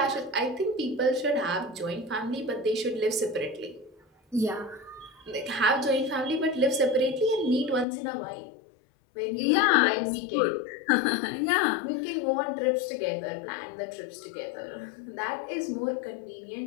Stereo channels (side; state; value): right; drops out; at 7.9 s